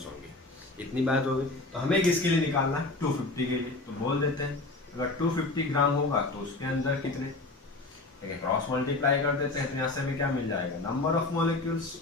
होंगे। इतनी बात हो गई। तो हमें किसके लिए निकालना है, 250 के लिए। तो बोल देते हैं अगर 250 ग्राम होगा तो उसके अंदर कितने, ठीक है, क्रॉस मल्टीप्लाई कर देते हैं तो यहाँ से हमें क्या मिल जाएगा, नंबर ऑफ मॉलिक्यूल्स,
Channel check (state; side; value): quieter; right; 3.1 dB